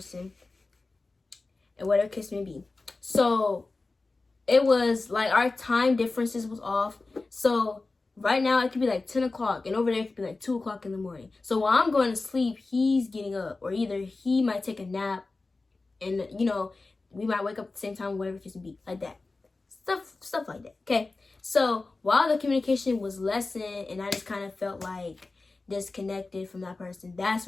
and whatever case may be. So it was like our time differences was off. So right now it could be like 10 o'clock, and over there it could be like 2 o'clock in the morning. So while I'm going to sleep, he's getting up, or either he might take a nap, and we might wake up at the same time, whatever case may be, like that. Stuff like that. Okay. So while the communication was lessened and I just kind of felt like disconnected from that person, that's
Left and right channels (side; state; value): right; quieter; 3.5 dB